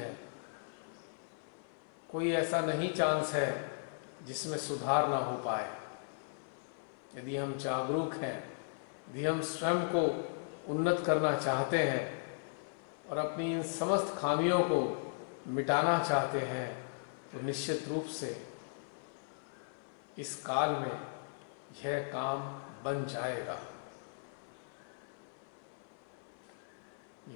कोई ऐसा नहीं चांस है जिसमें सुधार ना हो पाए। यदि हम जागरूक हैं, यदि हम स्वयं को उन्नत करना चाहते हैं और अपनी इन समस्त खामियों को मिटाना चाहते हैं, तो निश्चित रूप से इस काल में यह काम बन जाएगा।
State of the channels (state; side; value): silent; right; 53 dB below the other